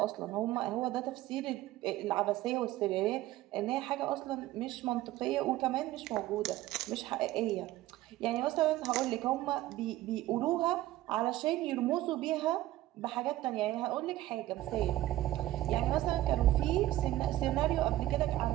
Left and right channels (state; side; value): quieter; left; 15.4 dB